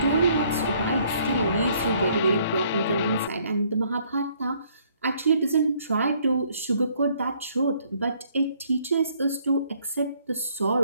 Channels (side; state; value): both; inverted; correlation -0.65